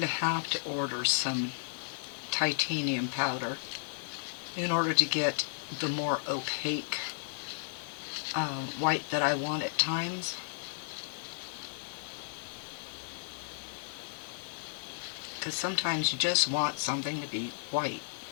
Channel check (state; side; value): silent; right; digital silence